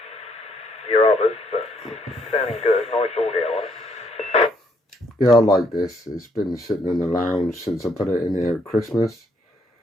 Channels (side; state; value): both; normal; correlation 0.70